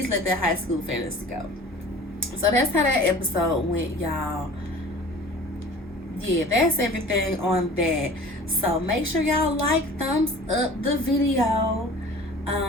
let that high school fantasy go. So that's how that episode went, y'all. Yeah, that's everything on that. So make sure y'all like, thumbs up the video.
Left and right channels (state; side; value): normal; both; correlation 0.44